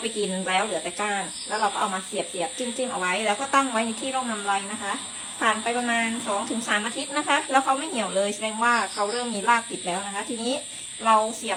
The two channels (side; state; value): both; identical; correlation 1.00